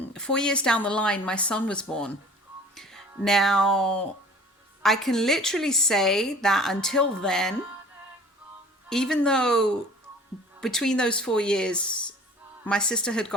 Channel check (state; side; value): normal; both; correlation 0.47